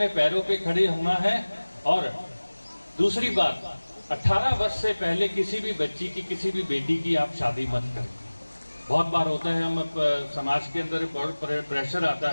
पैरों पे खड़े होना है। और दूसरी बात, 18 वर्ष से पहले किसी भी बच्ची की, किसी भी बेटी की आप शादी मत करें। बहुत बार होता है, हम समाज के अंदर बहुत प्रेशर आता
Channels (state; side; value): inverted; both; correlation -1.00